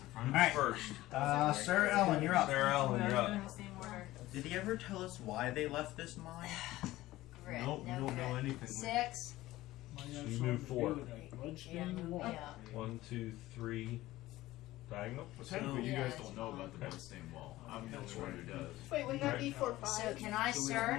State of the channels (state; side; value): quieter; right; 16.8 dB